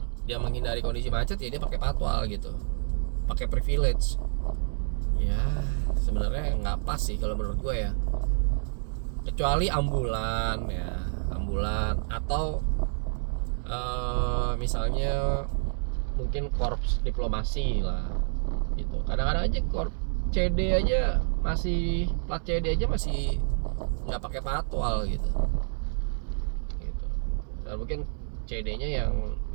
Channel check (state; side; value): silent; left; 59 dB below the other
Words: dia menghindari kondisi macet ya dia pakai patwal gitu, pakai privilege ya. Sebenarnya nggak pas sih kalau menurut gue ya, kecuali ambulan ya, ambulan atau misalnya mungkin korps diplomasi lah gitu. Kadang-kadang aja korps CD aja masih, plat CD aja masih nggak pakai patwal gitu. Dan mungkin CD-nya